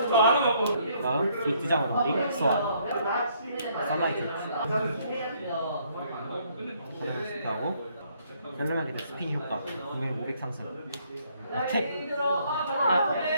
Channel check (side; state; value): both; inverted; correlation -0.67